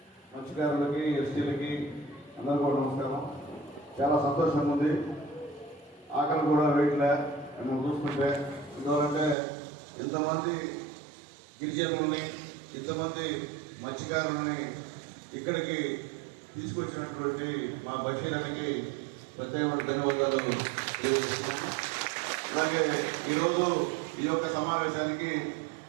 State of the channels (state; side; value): drops out; left; at 9.3 s